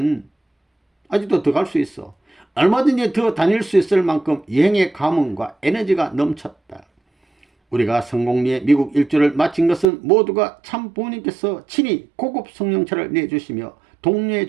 아직도 더 갈 수 있어. 얼마든지 더 다닐 수 있을 만큼 여행의 감흥과 에너지가 넘쳤다. 우리가 성공리에 미국 일주를 마친 것은 모두가 참 부모님께서 친히 고급 성령차를 내주시며 독려해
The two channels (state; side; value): drops out; left; at 9.9 s